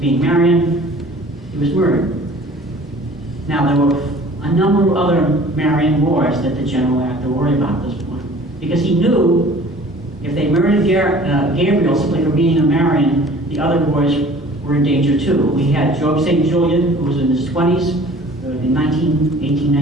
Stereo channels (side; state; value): both; normal; correlation 0.48